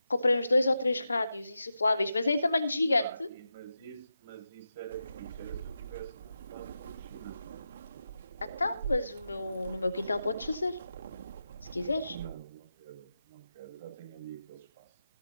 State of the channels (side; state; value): both; inverted; correlation -0.89